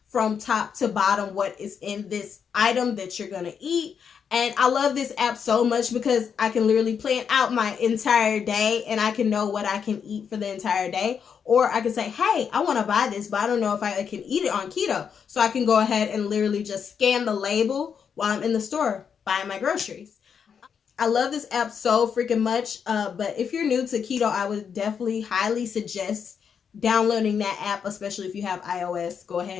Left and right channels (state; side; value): quieter; right; 7.0 dB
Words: from top to bottom what is in this item that you're going to eat. And I love this app so much because I can literally plan out my entire day and I can know what I can eat for the entire day. Or I can say, hey, I want to buy this, but I don't know if I can eat it on keto. So I can go ahead and literally just scan the label while I'm in the store buying my groceries. I love this app so freaking much, but if you're new to keto, I would definitely highly suggest downloading that app, especially if you have iOS. Go